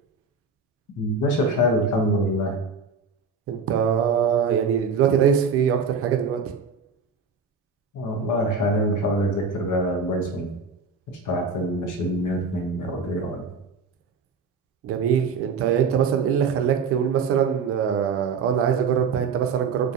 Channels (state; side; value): quieter; left; 4.7 dB